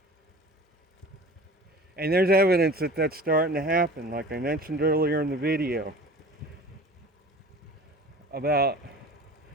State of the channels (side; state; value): both; normal; correlation 0.41